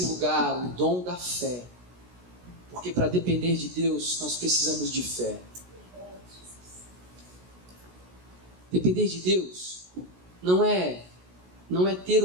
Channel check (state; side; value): late; left; 16 ms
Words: lugar o dom da fé. Porque para depender de Deus, nós precisamos de fé. Depender de Deus não é ter